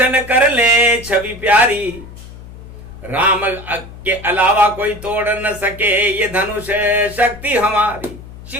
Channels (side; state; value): left; noise; hum, 16 dB below the sound